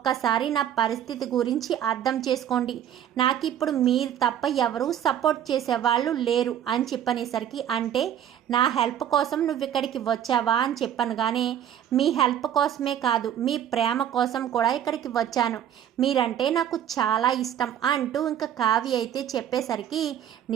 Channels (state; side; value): quieter; left; 10.1 dB